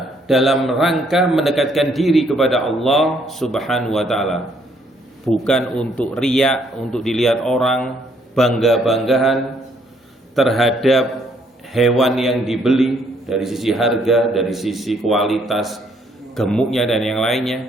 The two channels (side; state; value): both; normal; correlation 0.68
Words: dalam rangka mendekatkan diri kepada Allah Subhanahu wa taala, bukan untuk riya, untuk dilihat orang, bangga-banggahan terhadap hewan yang dibeli dari sisi harga, dari sisi kualitas gemuknya dan yang